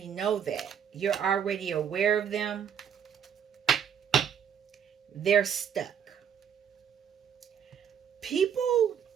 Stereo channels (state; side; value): quieter; left; 8.2 dB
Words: know that. You're already aware of them. They're stuck. People